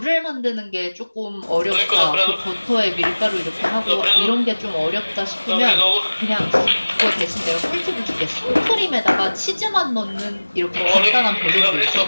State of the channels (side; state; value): both; inverted; correlation -1.00